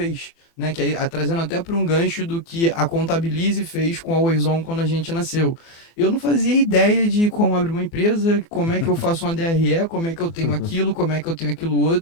Né, que aí, trazendo até para um gancho do que a Contabilize fez com a Oizon quando a gente nasceu. Eu não fazia ideia de como abrir uma empresa, como é que eu faço uma DRE, como é que eu tenho aquilo, como é que eu tenho aquilo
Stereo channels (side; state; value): right; late; 38 ms